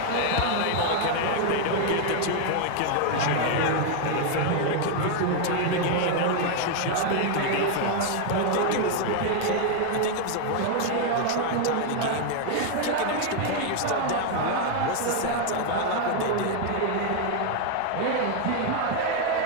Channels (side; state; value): both; different; correlation 0.00